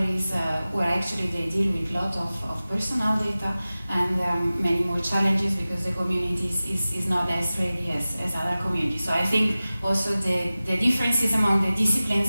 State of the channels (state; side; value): inverted; both; correlation -0.97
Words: is where actually they deal with a lot of personal data, and many more challenges because the community is not as ready as other communities. So I think also the differences among the